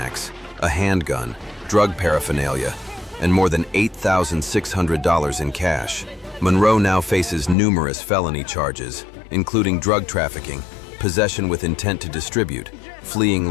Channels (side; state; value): right; drops out; at 7.6 s